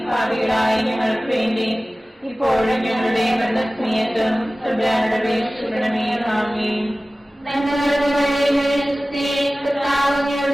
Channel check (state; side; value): normal; both; correlation 0.97